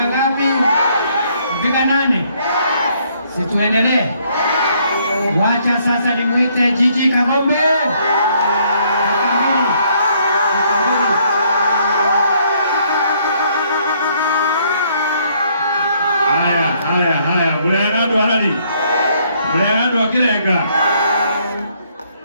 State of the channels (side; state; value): both; inverted; correlation -0.68